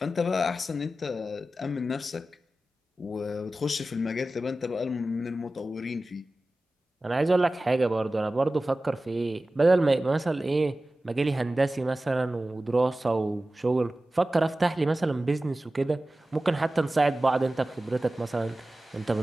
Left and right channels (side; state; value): both; normal; correlation 0.95